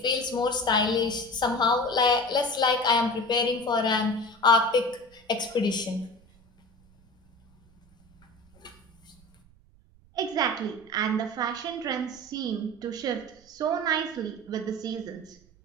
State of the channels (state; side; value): noise; right; rumble, 29 dB below the sound